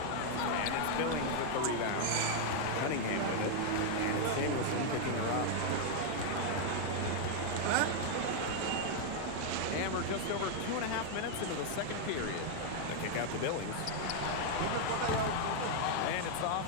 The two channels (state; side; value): different; both; correlation 0.00